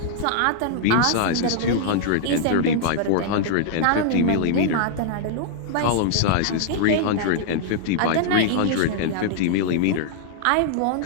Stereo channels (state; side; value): different; both; correlation -0.01